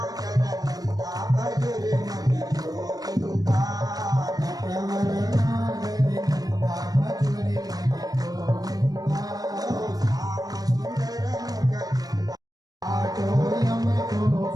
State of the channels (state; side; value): late; left; 0.18 ms